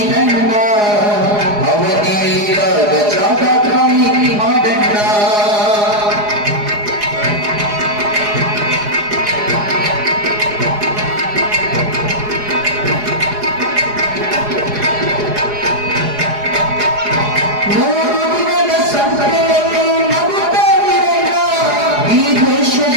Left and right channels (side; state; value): left; late; 4.8 ms